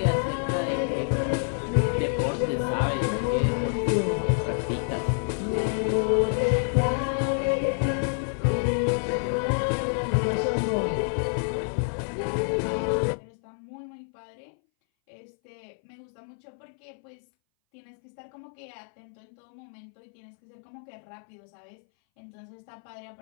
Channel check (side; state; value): right; silent; 59 dB below the other